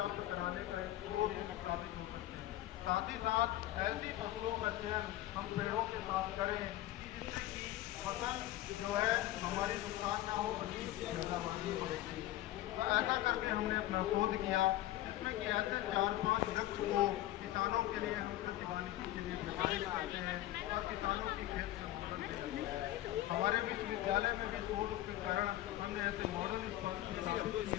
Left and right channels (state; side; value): quieter; right; 14.9 dB